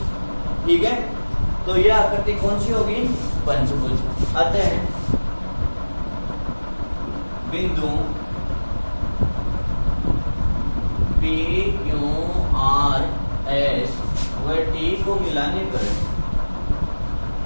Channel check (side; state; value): both; inverted; correlation -1.00